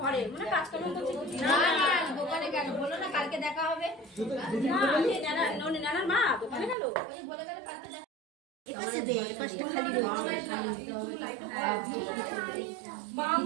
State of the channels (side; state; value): left; drops out; at 6.8 s